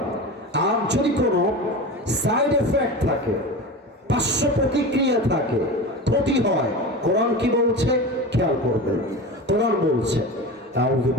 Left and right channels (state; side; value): normal; both; correlation 0.29